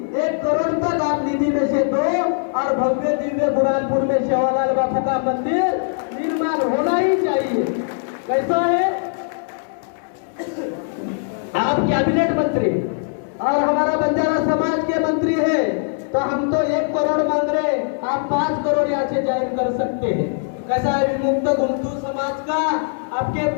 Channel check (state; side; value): silent; right; digital silence